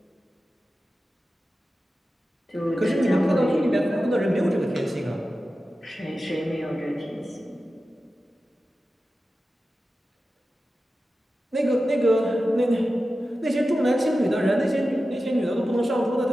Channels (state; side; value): normal; both; correlation 0.93